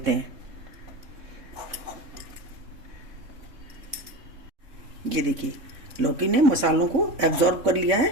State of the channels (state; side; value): late; left; 3.6 ms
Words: हैं। ये देखिए लौकी ने मसालों को एब्जॉर्ब कर लिया